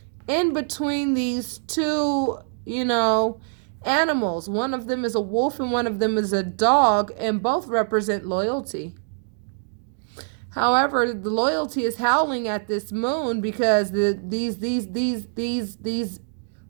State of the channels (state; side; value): silent; left; digital silence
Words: in between these two, you know, animals. One of them is a wolf and one of them is a dog, and both represent loyalty. However, the loyalty is howling at this moon because these